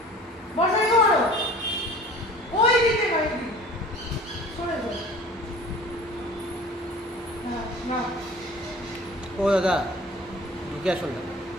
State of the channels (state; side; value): normal; both; correlation 0.44